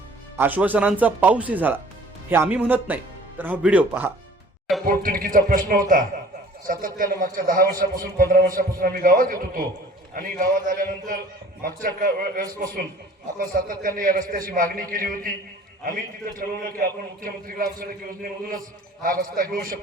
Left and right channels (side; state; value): both; normal; correlation 0.50